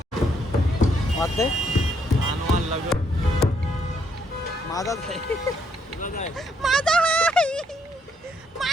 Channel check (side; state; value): both; normal; correlation 0.72